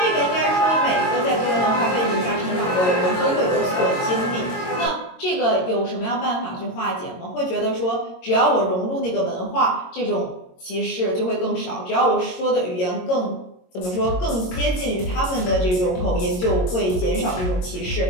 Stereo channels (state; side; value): late; right; 22 ms